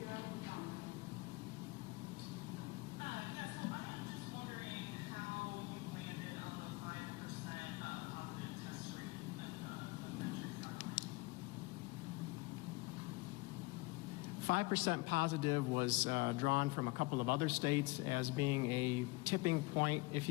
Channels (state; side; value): quieter; right; 24.8 dB